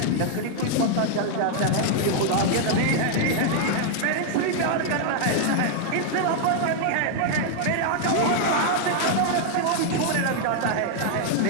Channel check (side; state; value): both; different; correlation 0.00